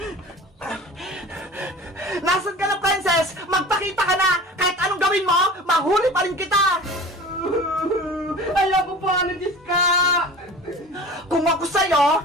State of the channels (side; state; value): both; normal; correlation 0.39